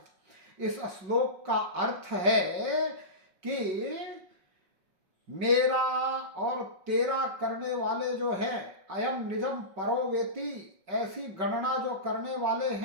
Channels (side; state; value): left; late; 5.3 ms